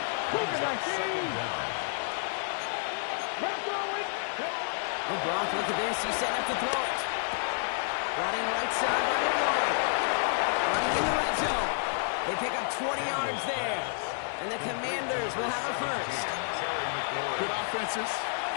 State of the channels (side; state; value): right; silent; 58 dB below the other